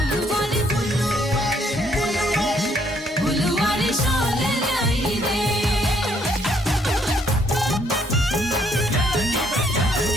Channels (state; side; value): normal; both; correlation 0.68